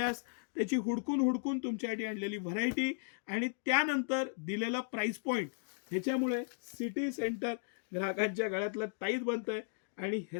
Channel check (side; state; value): right; silent; digital silence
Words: त्याची हुडकून तुमच्यासाठी आणलेली व्हरायटी आणि त्यानंतर दिलेला प्राइस पॉईंट, ह्याच्यामुळे सिटी सेंटर ग्राहकांच्या गळ्यातलं ताईत बनतंय आणि